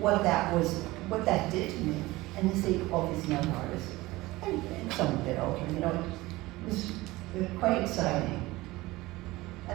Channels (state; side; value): quieter; left; 19.6 dB